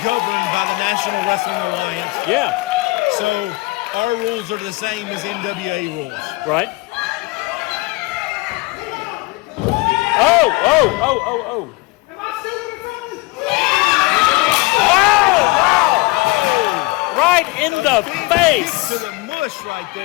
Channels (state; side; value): quieter; right; 23.1 dB